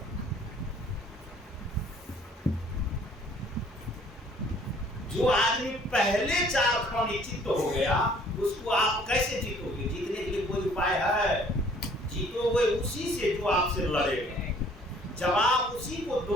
जो आदमी पहले 4 खाने चित्त हो गया उसको आप कैसे जीतोगे। जीतने के लिए कोई उपाय है, जीतोगे उसी से जो आपसे लड़ेगा, जवाब उसी को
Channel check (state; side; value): normal; both; correlation 0.57